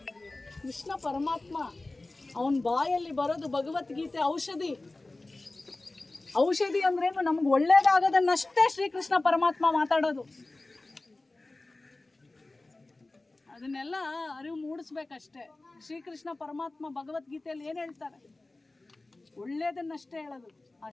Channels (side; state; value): right; quieter; 3.0 dB